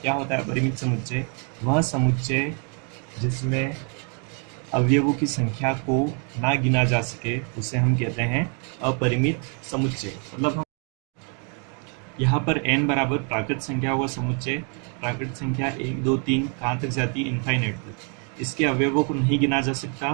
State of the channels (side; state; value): left; quieter; 39.0 dB